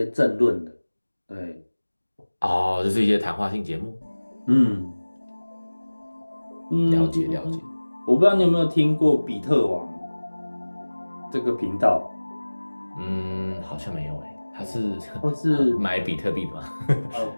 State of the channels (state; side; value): inverted; both; correlation -1.00